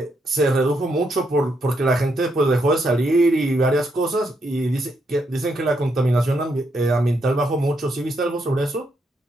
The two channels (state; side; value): normal; both; correlation 0.78